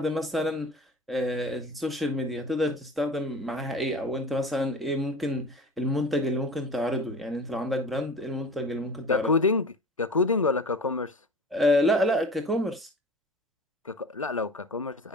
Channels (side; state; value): both; normal; correlation 0.37